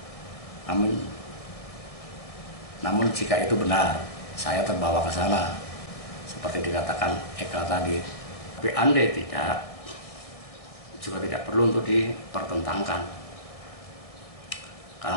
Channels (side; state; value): right; late; 1.7 ms